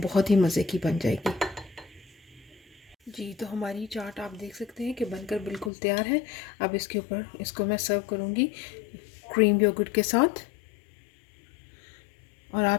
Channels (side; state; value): right; drops out; at 5.7 s